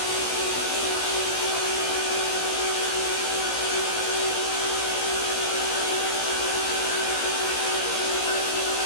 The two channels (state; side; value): late; right; 17 ms